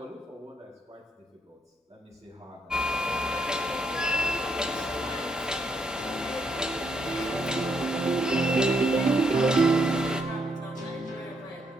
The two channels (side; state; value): both; normal; correlation 0.75